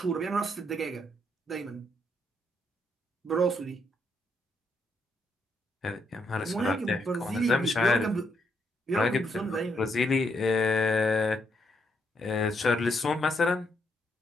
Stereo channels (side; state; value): both; normal; correlation 0.76